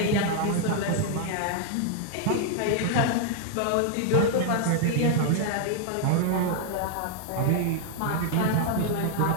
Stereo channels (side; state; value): both; different; correlation 0.00